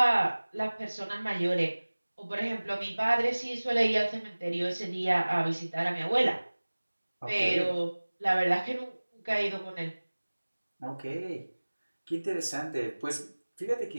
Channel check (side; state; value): both; inverted; correlation -1.00